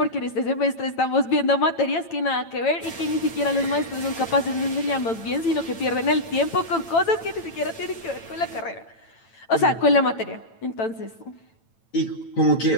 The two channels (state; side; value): late; right; 9.0 ms